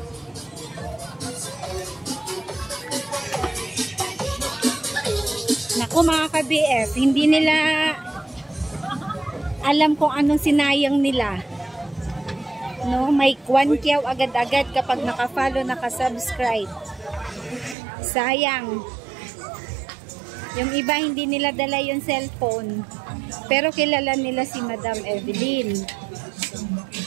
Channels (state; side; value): drops out; left; at 17.8 s